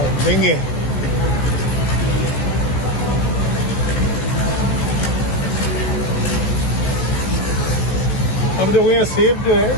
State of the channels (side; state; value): right; late; 16 ms